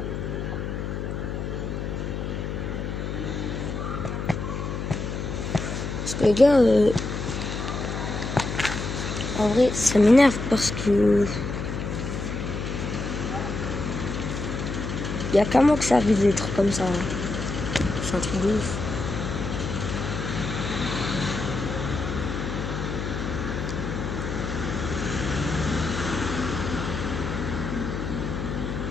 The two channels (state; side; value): noise; left; hum, 4 dB below the sound